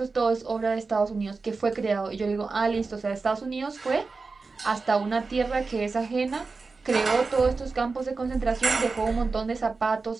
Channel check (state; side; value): quieter; left; 4.2 dB